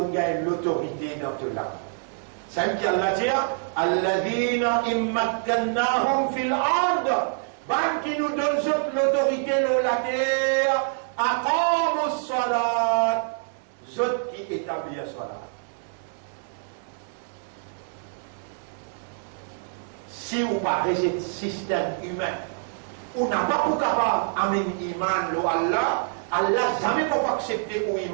gagne l'autorité dans tout là. C'est ce qu'Allah dit, Alladina immakkannahum fil ard. Ban qui nous donne l'autorité dans la terre, aqamus salat. Zot qui établit la salat. Si vous parlez de système humain, on n'a pas pour capable d'amener l'iman à Allah, Allah jamais peut accepter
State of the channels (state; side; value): silent; left; 61 dB below the other